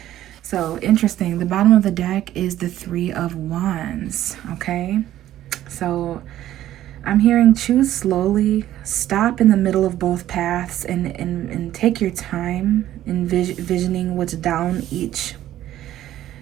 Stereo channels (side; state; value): left; quieter; 13.1 dB